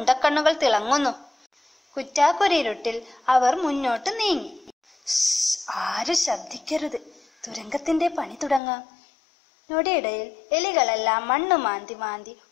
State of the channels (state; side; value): drops out; right; at 8.6 s